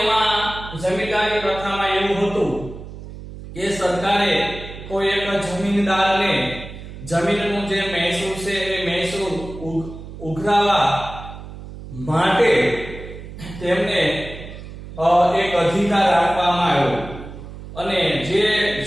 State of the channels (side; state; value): right; noise; hum, 13 dB below the sound